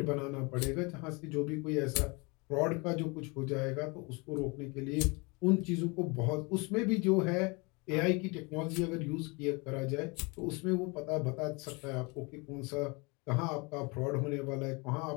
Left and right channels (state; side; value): quieter; right; 28.7 dB